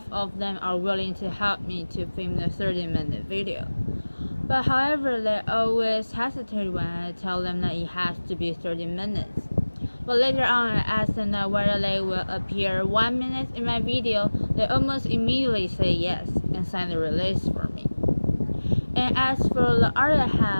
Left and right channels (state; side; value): inverted; both; correlation -1.00